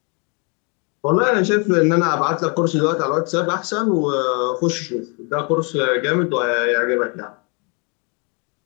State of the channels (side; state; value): right; quieter; 34.3 dB